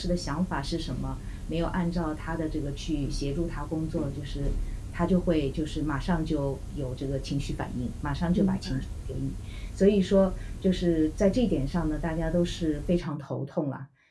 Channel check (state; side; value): identical; both; correlation 1.00